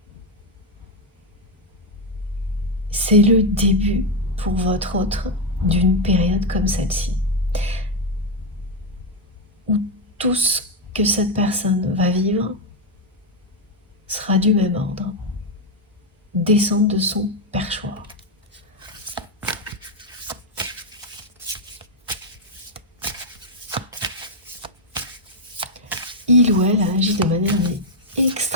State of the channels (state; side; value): normal; both; correlation 0.03